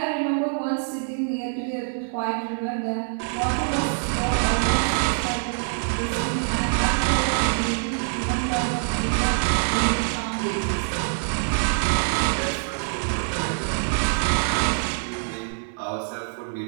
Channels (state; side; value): silent; left; digital silence